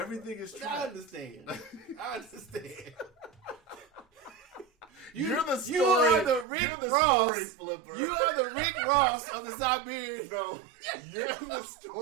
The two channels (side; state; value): left; drops out; at 6.5 s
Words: Everything is tracked. I understand. I understand. You're the story. You are the Rick You're the Ross. Story flipper. You are the Rick Ross of the Siberian. No, you're the